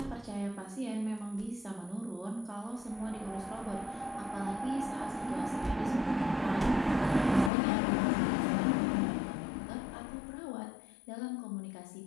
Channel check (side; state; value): right; drops out; at 7.5 s